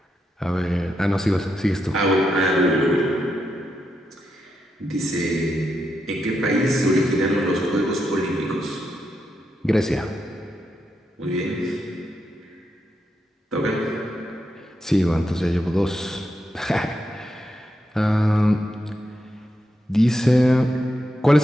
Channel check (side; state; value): both; normal; correlation 0.84